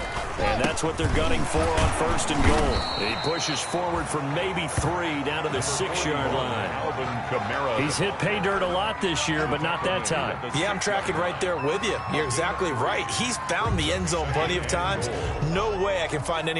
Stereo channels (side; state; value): both; identical; correlation 1.00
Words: and that's what they're gunning for on 1st and goal. He pushes forward for maybe 3 down to the 6-yard line. He's hit pay dirt a lot this year, but not that time. Yeah, I'm tracking right there with you. You're exactly right. He's found the end zone plenty of times. No way I can find